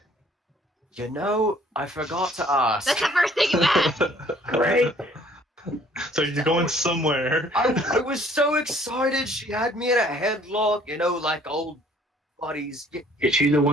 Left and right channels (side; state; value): both; normal; correlation 0.58